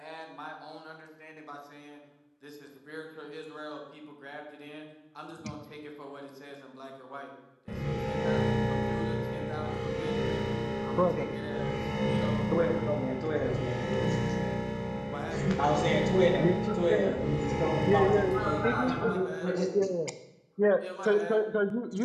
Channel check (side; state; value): both; identical; correlation 1.00